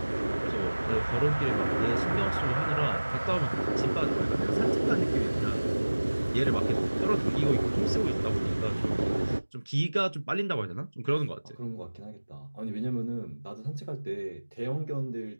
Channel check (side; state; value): both; inverted; correlation -1.00